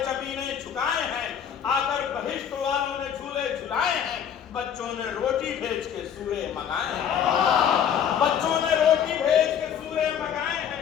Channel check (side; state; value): right; quieter; 8.6 dB